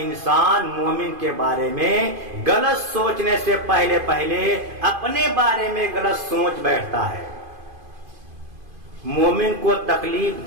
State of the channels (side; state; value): left; late; 2.5 ms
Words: انسان مومن کے بارے میں غلط سوچنے سے پہلے اپنے بارے میں غلط سوچ بیٹھتا ہے۔ مومن کو تکلیف